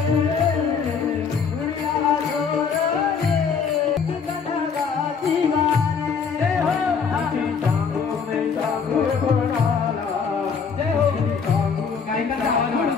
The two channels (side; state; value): right; quieter; 6.0 dB